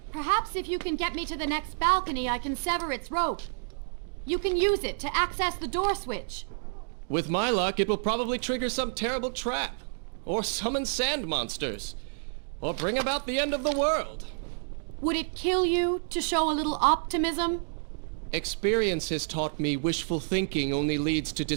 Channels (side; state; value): left; silent; digital silence